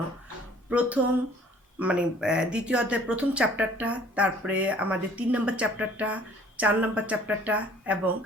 প্রথম দ্বিতীয় অধ্যায়ের প্রথম চ্যাপ্টারটা, তারপরে আমাদের 3 নম্বর চ্যাপ্টারটা, 4 নম্বর চ্যাপ্টারটা এবং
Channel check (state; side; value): normal; both; correlation 0.55